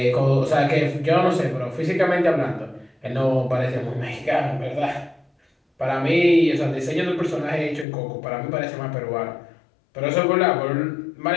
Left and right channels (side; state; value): right; drops out; at 7.9 s